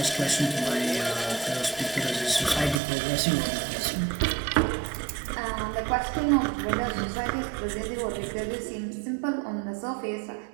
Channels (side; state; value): left; drops out; at 2.8 s